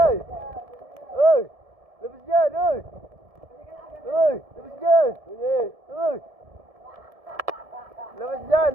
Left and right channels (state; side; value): late; left; 1.7 ms